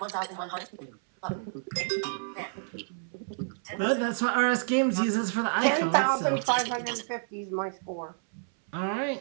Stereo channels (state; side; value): silent; left; 58 dB below the other